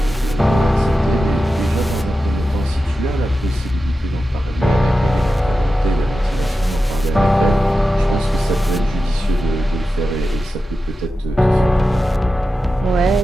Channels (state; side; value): normal; both; correlation 0.92